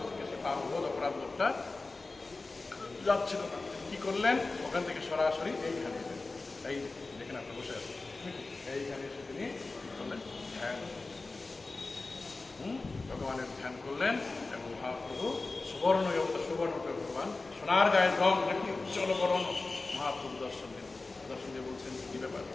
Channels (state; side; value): quieter; right; 3.5 dB